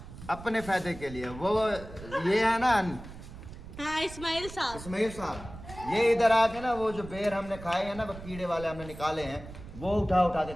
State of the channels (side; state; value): right; noise; rumble, 14 dB below the sound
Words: अपने फायदे के लिए, वो ये है ना हाँ, इस्माइल साहब। इस्माइल साहब, ये इधर आके ना वो जो बेर हमने खाए हैं ना, वो कीड़े वाले हमने निकाले हैं, वो उठा उठा के